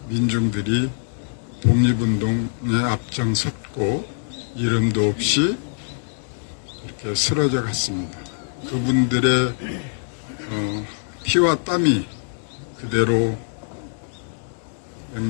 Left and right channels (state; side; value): silent; right; digital silence